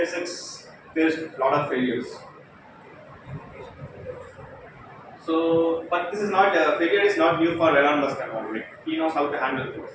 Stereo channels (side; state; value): both; identical; correlation 1.00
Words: faced a lot of failures. So, but this is not failure is not new for Elon Musk at all. Like, he knows how to handle